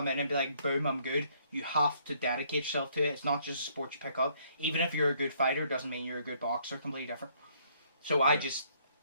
in and be like, boom, I'm good. You have to dedicate yourself to it. It's not just a sport you pick up. Even if you're a good fighter, doesn't mean you're a good boxer, completely different. So I just,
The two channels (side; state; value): both; inverted; correlation -0.66